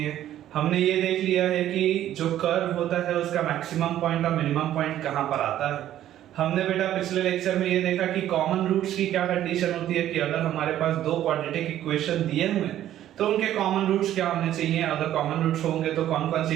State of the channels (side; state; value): left; quieter; 12.2 dB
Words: हैं। हमने ये देख लिया है कि जो कर्व होता है उसका मैक्सिमम पॉइंट और मिनिमम पॉइंट कहाँ पर आता है। हमने बेटा पिछले लेक्चर में ये देखा कि कॉमन रूट्स की क्या कंडीशन होती है कि अगर हमारे पास दो क्वाड्रेटिक इक्वेशन दिए हुए हैं तो उनके कॉमन रूट्स क्या होने चाहिए, अगर कॉमन रूट्स होंगे तो कौन कौन